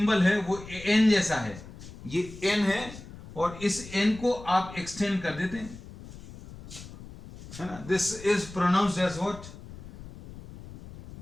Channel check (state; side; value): noise; left; rumble, 16 dB below the sound